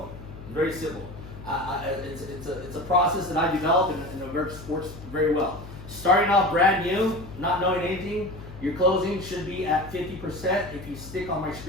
Very simple. It's a process that I developed and it works very well. Starting off brand new, not knowing anything, your closing should be at 50% if you stick on my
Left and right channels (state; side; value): noise; left; hum, 14 dB below the sound